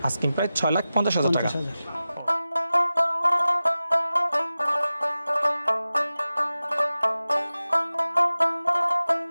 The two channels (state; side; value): inverted; both; correlation -0.95